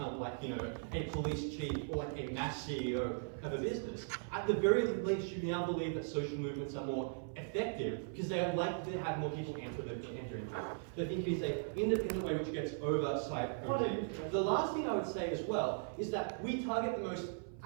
a police chief or a mass CEO of a business, at the very least you now believe that social movements are more effective because they are likely to have more people enter into it. So I think it is an independent way which gets oversight over it. The last thing I would say as well is that we target the most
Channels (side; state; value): left; silent; 52 dB below the other